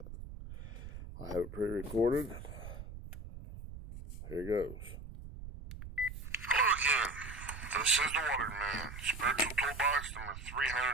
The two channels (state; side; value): noise; right; rumble, 11 dB below the sound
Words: I have it pre-recorded. Here goes. Hello again. This is the Waterman, Spiritual Toolbox number